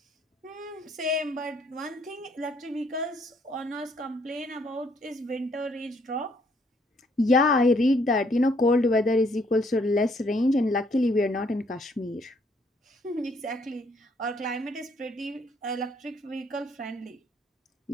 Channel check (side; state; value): both; normal; correlation 0.67